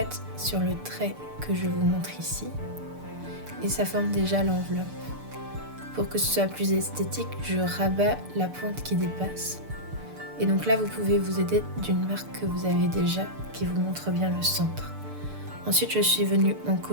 sur le trait que je vous montre ici, et ça forme déjà l'enveloppe. Pour que ce soit plus esthétique, je rabats la pointe qui dépasse. Et donc là, vous pouvez vous aider d'une marque que vous avez déjà, qui vous montre bien le centre. Ensuite, je suis venue en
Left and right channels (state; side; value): late; left; 6.8 ms